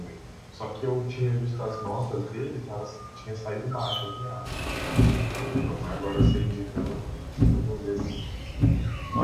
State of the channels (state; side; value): identical; both; correlation 1.00